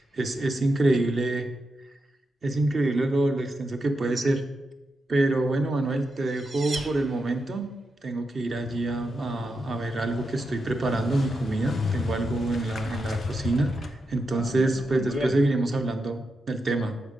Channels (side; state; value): both; normal; correlation 0.86